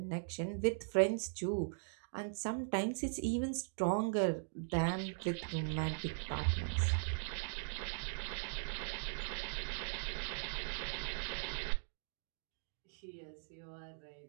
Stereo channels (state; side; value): silent; left; digital silence